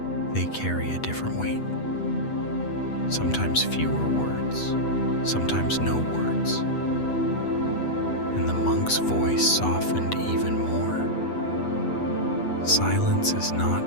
they carry a different weight. Sometimes fewer words, sometimes no words. And the monk's voice softened even more. Silence is not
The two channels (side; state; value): right; late; 8.2 ms